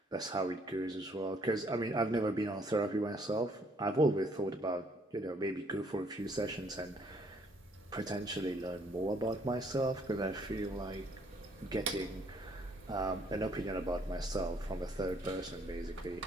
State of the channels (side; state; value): both; normal; correlation 0.65